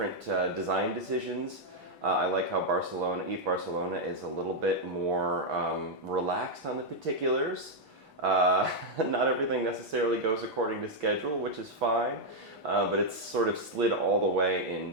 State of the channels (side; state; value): both; normal; correlation -0.01